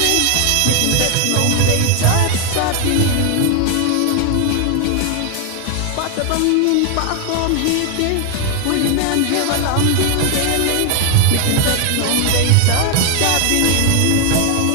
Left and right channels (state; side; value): different; both; correlation 0.00